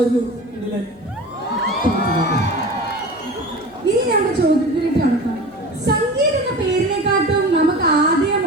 കിടിലൻ. ഇനി നമ്മുടെ ചോദ്യത്തിലേക്ക് കടക്കാം. സംഗീത് എന്ന പേരിനെക്കാട്ടും നമുക്ക് ആദ്യം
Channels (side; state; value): right; noise; hum, 30 dB below the sound